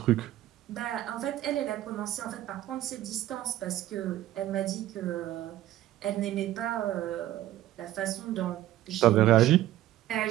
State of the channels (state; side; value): quieter; left; 14.0 dB